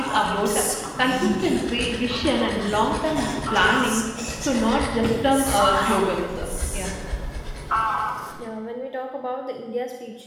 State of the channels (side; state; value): both; identical; correlation 1.00